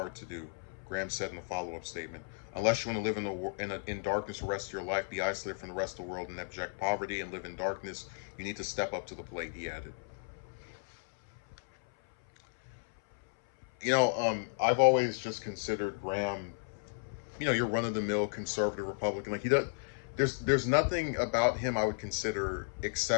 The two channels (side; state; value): right; silent; 55 dB below the other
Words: to do, Graham said in a follow-up statement. Unless you want to live in darkness the rest of your life, be isolated from the rest of the world in abject poverty, and live in darkness, you need to step up to the plate, he added. I've always just considered Graham, your run-of-the-mill conservative Republican. Like, he does, there's nothing about him I would consider